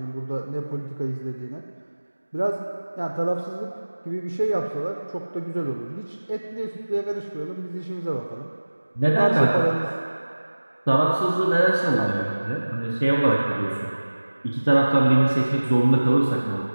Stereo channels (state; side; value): inverted; both; correlation -1.00